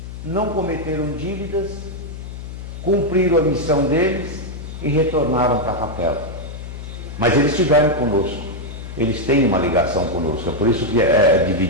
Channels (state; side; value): noise; left; hum, 11 dB below the sound